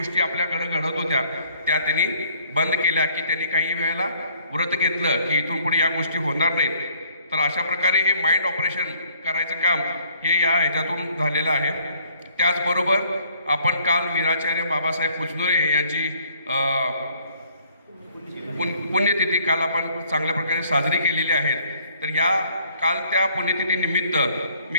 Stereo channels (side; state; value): both; inverted; correlation -0.62